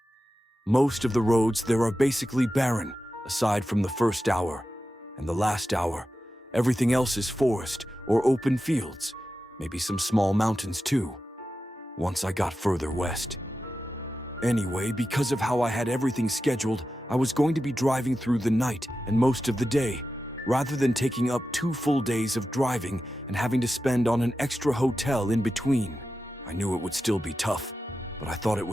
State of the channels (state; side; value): normal; both; correlation 0.91